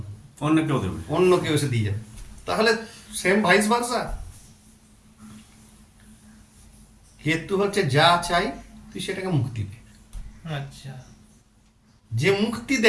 অন্য কেউ দেবে। অন্য কেউ এসে দিয়ে যাবে। তাহলে সেম ভাইস ভার্সা। কেতু হচ্ছে যা চাই তুই সেটাকে মুক্তি দে। আচ্ছা, যে মুক্তি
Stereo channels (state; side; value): identical; both; correlation 1.00